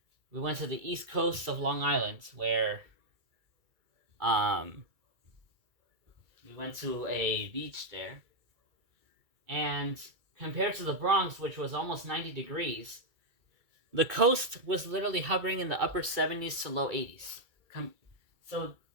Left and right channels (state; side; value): late; left; 2.3 ms